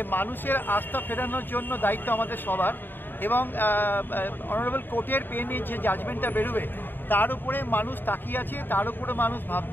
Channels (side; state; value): right; late; 0.094 ms